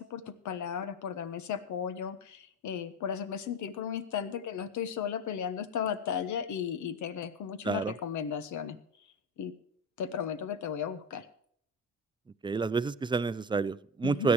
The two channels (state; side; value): normal; both; correlation 0.23